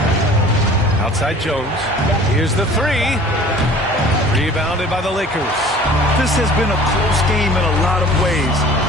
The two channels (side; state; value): both; normal; correlation 0.47